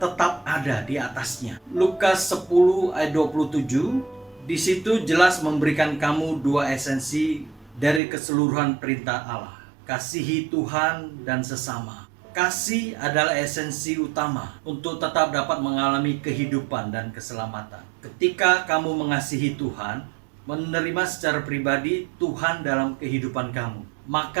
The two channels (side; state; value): left; drops out; at 8.0 s